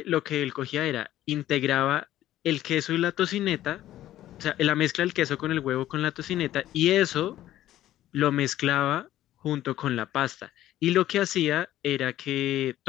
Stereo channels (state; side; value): quieter; right; 13.5 dB